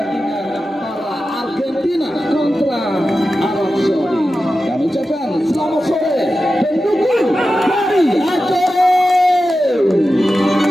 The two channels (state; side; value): normal; both; correlation 0.93